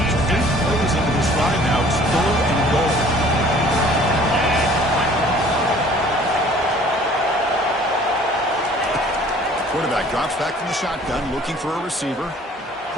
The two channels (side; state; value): both; normal; correlation 0.53